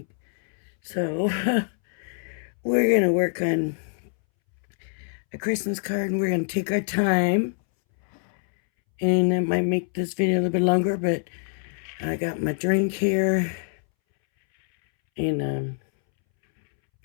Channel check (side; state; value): right; silent; 62 dB below the other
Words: So, we're gonna work on a Christmas card, and we're gonna take our time, and it might make this video a little bit longer, but I got my drink here, and